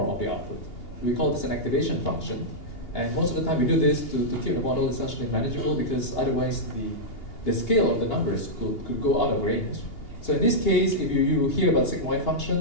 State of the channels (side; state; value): right; late; 2.8 ms